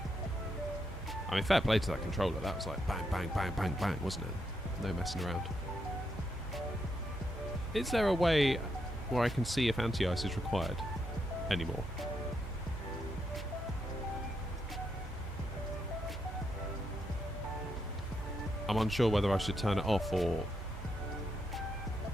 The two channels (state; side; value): normal; both; correlation 0.81